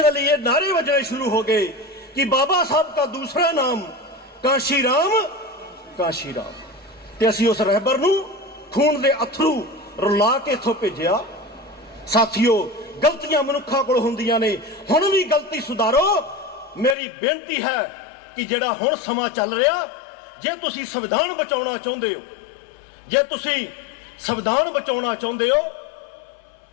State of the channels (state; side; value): drops out; right; at 16.9 s